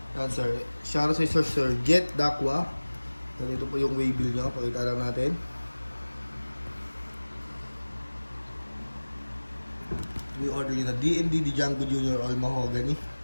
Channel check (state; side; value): inverted; both; correlation -1.00